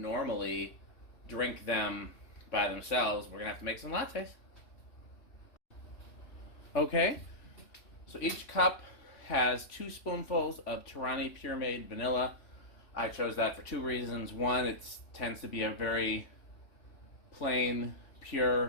drink them by themselves, we're going to have to make some lattes. Okay. So each cup has 2 spoonfuls of Tirani Pure Made Vanilla. I chose that for 2 reasons. One, it tends to be a very plain, pure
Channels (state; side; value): late; right; 3.5 ms